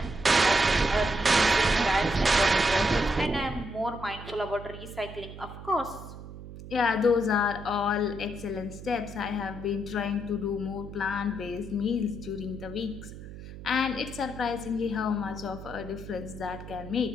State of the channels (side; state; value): right; noise; hum, 13 dB below the sound